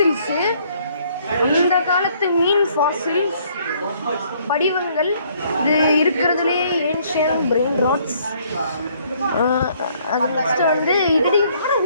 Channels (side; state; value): both; inverted; correlation -0.64